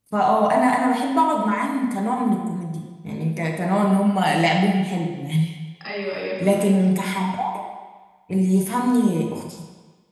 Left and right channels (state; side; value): identical; both; correlation 1.00